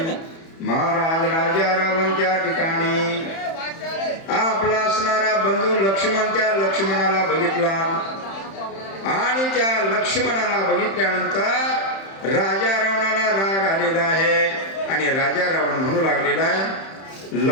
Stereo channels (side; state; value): right; late; 31 ms